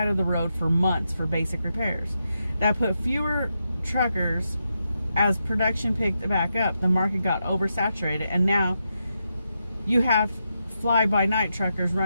of the road for months for basic repairs. That put fewer truckers. As production picked back up, the market got oversaturated, and now you have fly-by-night truckers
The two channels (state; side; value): inverted; both; correlation -0.85